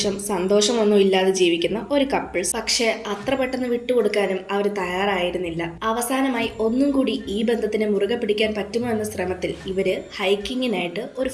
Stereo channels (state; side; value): identical; both; correlation 1.00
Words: സന്തോഷമൊന്നും ഇല്ലാതെ ജീവിക്കുന്ന ഒരു കപ്പിൾസ്. പക്ഷെ അത്ര പെട്ടെന്ന് വിട്ടുകൊടുക്കാനും അവർ തയ്യാറായിരുന്നില്ല. അവസാനമായി ഒന്നും കൂടി ഈ ബന്ധത്തിനെ മുറുകെ പിടിക്കാൻ പറ്റുമോ എന്ന ശ്രമത്തിൽ ഇവര് ഹൈക്കിങ്ങിനായിട്ട് ഒരു